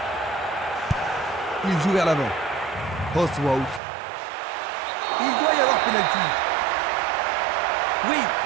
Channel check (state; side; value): drops out; left; at 3.8 s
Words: Il joue vers l'avant. Postwout. Il doit y avoir pénalty. Oui,